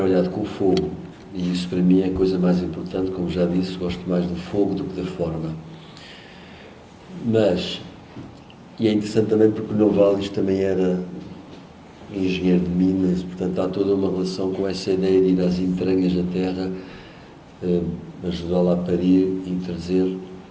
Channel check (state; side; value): identical; both; correlation 1.00